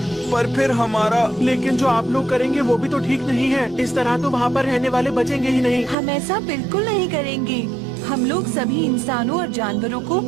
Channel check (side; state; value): left; drops out; at 6.0 s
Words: पर फिर हमारा, लेकिन जो आप लोग करेंगे वो भी तो ठीक नहीं है। इस तरह तो वहाँ पर रहने वाले बचेंगे ही नहीं। हम ऐसा बिल्कुल नहीं करेंगे। हम लोग सभी इंसानों और जानवरों को